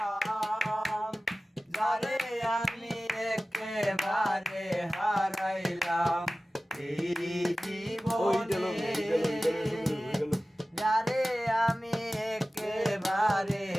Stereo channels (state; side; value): normal; both; correlation 0.96